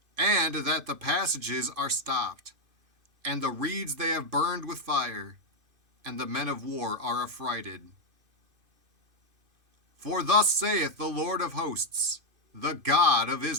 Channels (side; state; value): left; late; 2.5 ms